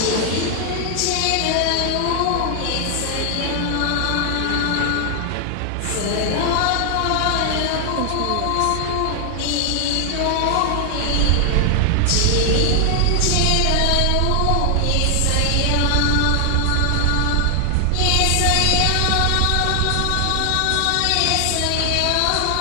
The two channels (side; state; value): both; different; correlation 0.00